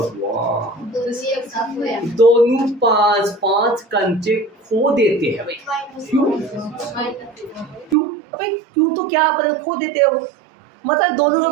दोनों 5-5 कंचे खो देते हैं भाई। क्यों भाई? क्यों तो क्या खो देते हो, मतलब दोनों के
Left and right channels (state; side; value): drops out; left; at 8.0 s